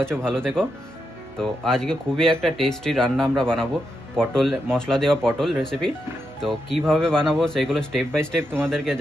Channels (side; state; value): both; normal; correlation 0.84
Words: আছো, ভালো থেকো। তো আজকে খুবই একটা টেস্টি রান্না আমরা বানাবো, পটল মশলা দেওয়া পটল রেসিপি। তো কিভাবে বানাবো সেগুলো স্টেপ বাই স্টেপ তোমাদেরকে